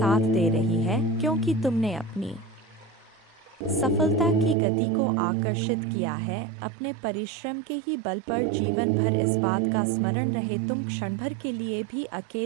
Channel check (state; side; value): drops out; left; at 4.5 s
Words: दे रही है, क्योंकि तुमने अपनी सफलता की गति को आकर्षित किया है। अपने परिश्रम के ही बल पर जीवन भर इस बात का स्मरण रहे, तुम क्षण भर के लिए भी